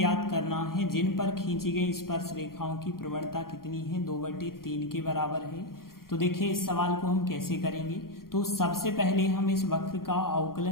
करना है जिन पर खींची गई स्पर्श रेखाओं की प्रवणता कितनी है? 2/3 के बराबर है। तो देखिए, इस सवाल को हम कैसे करेंगे? तो सबसे पहले हम इस वक्र का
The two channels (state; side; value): late; right; 0.92 ms